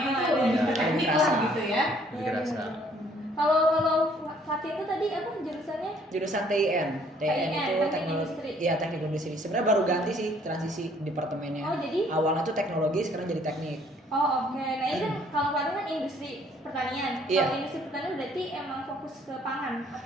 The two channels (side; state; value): both; normal; correlation 0.62